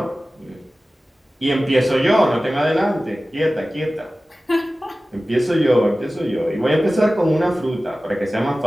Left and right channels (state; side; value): normal; both; correlation 0.96